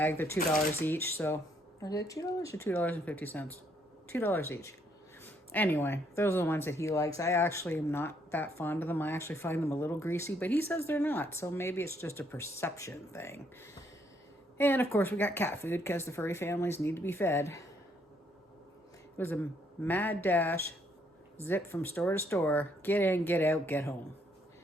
They're $2 each. So, is it $2 or $2.50? $2 each. Anyway, those are the ones that he likes. I actually am not that fond of them. I actually find them a little greasy, but he says they're not. So maybe it's just a perception thing. And of course we got cat food because the furry families need to be fed. It was a mad dash, zip from store to store, get in, get out, get home.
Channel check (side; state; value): both; normal; correlation 0.70